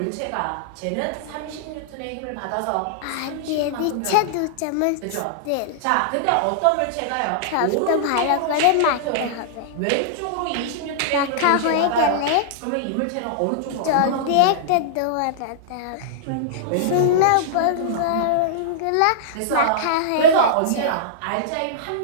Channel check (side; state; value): both; different; correlation -0.02